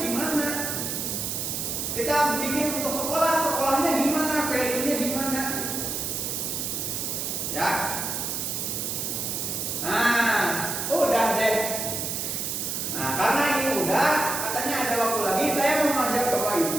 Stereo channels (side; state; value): right; noise; hiss, 2 dB below the sound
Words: gimana. Kita bikin untuk sekolahnya gimana, value-nya gimana. Ya. Nah, udah deh. Nah, karena ini udah, katanya ada waktu lagi, saya mau mengajak Bapak